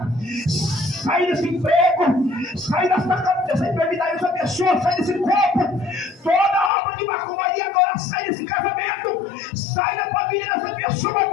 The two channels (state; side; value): drops out; right; at 6.7 s